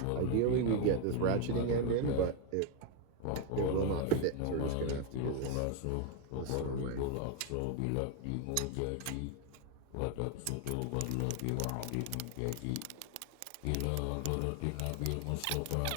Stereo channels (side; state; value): both; different; correlation 0.01